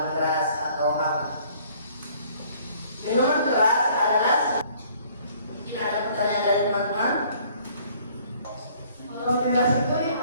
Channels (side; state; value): both; inverted; correlation -0.58